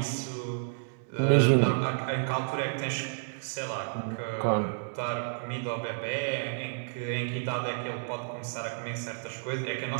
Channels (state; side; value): silent; left; digital silence